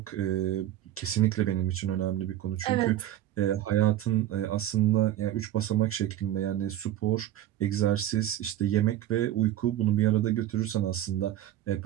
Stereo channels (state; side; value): quieter; left; 12.7 dB